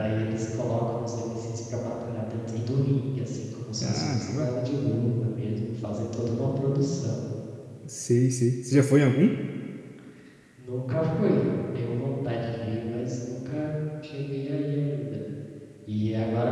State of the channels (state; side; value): identical; both; correlation 1.00